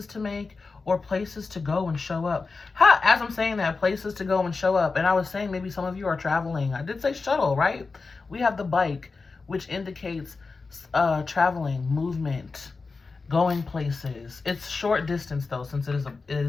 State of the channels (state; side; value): quieter; right; 4.2 dB